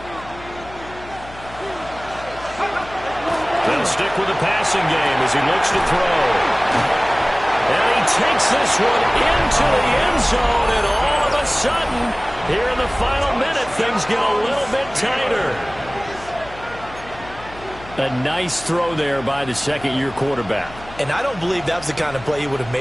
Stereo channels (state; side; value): noise; left; hum, 18 dB below the sound